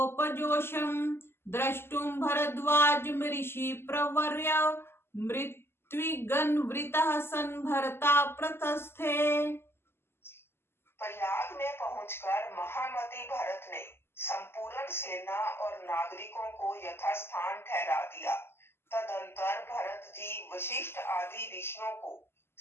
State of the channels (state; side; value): late; right; 0.12 ms